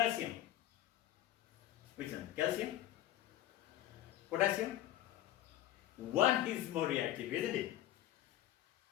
Which one? Calcium? Potassium? One is more reactive, isn't it?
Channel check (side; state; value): right; quieter; 13.7 dB